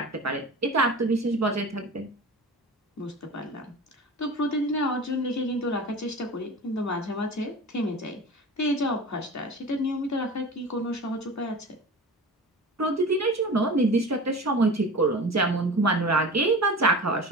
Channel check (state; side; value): normal; both; correlation 0.34